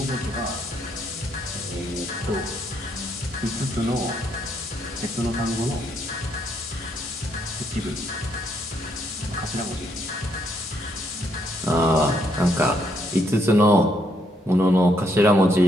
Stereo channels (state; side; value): normal; both; correlation 0.73